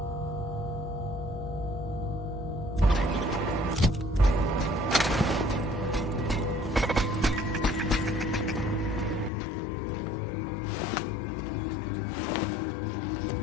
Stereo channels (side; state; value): right; drops out; at 9.3 s